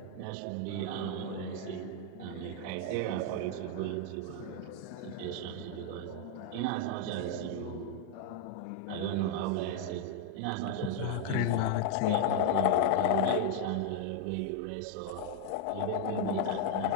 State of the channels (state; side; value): different; both; correlation 0.00